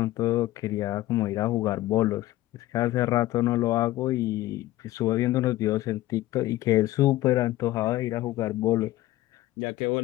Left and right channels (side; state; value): right; quieter; 16.2 dB